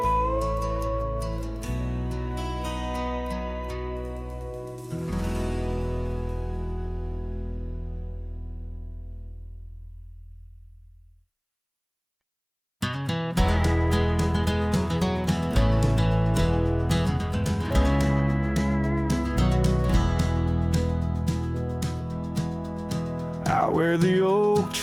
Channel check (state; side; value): identical; both; correlation 1.00